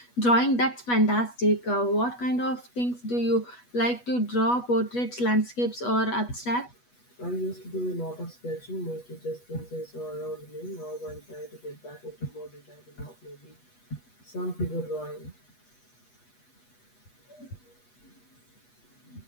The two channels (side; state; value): right; late; 8.2 ms